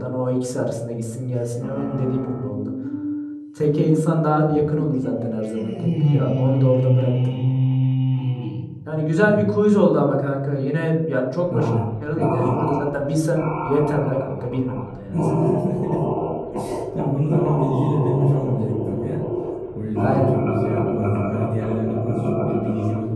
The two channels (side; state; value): both; identical; correlation 1.00